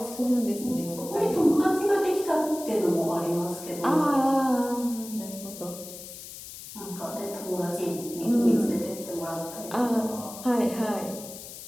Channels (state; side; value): noise; left; hiss, 13 dB below the sound